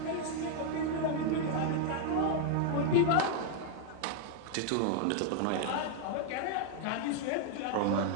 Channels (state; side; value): different; both; correlation 0.00